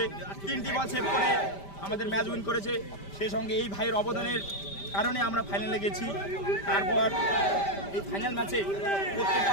3টি বল সেভ করে আমাদের ম্যাচ উইন করেছে। সেই সঙ্গে এই ভাইয়ের অবদানের কারণে আমরা ফাইনালে গেছি। তারপর এই ফাইনাল ম্যাচে প্রত্যেকটা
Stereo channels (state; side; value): late; right; 5.1 ms